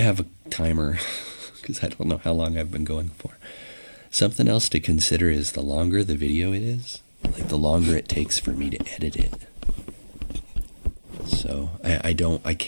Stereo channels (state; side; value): inverted; both; correlation -1.00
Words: a timer because I don't know how long I've been going for. Something else to consider is the longer the video it is, like the longer it takes for me to edit it. So I